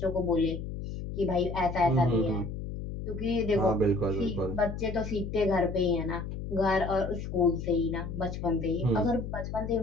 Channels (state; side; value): noise; left; hum, 7 dB below the sound